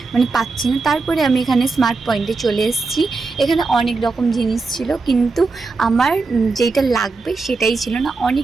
মানে পাচ্ছি না। তারপরে আমি এখানে স্মার্ট পয়েন্টে চলে এসেছি। এখানে অনেক রকম জিনিস ছিল, কিন্তু আমার যেটা লাগবে সেটাই ছিল না।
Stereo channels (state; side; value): quieter; left; 4.0 dB